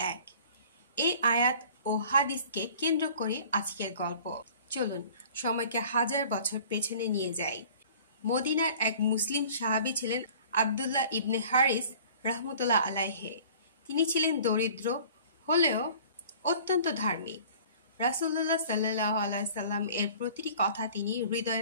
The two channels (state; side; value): inverted; both; correlation -0.48